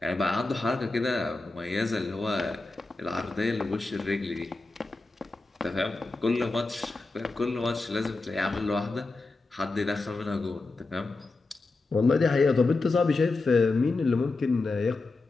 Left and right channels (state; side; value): quieter; right; 3.5 dB